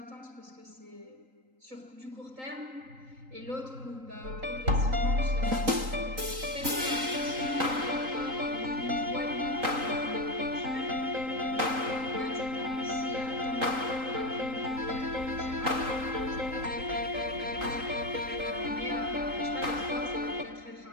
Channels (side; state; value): left; late; 3.8 ms